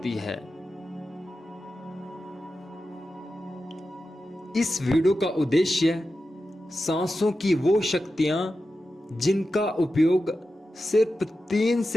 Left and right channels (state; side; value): normal; both; correlation 0.91